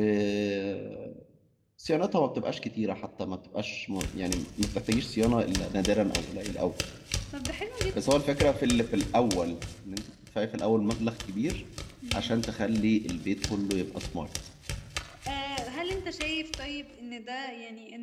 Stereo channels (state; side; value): identical; both; correlation 1.00